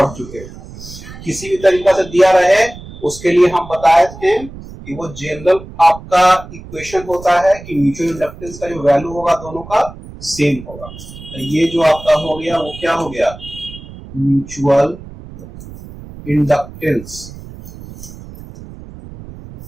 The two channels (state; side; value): noise; right; rumble, 16 dB below the sound